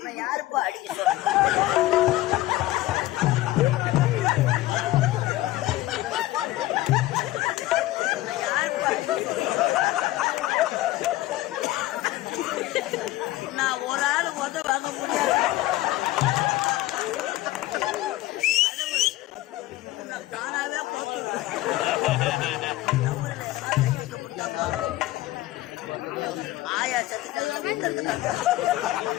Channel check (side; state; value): right; quieter; 16.8 dB